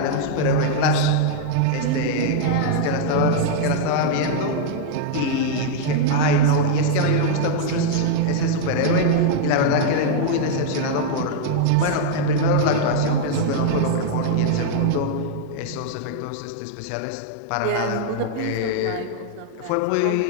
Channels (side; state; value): both; different; correlation -0.01